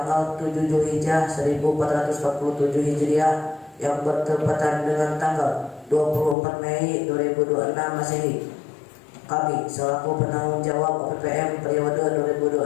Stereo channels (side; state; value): right; drops out; at 6.4 s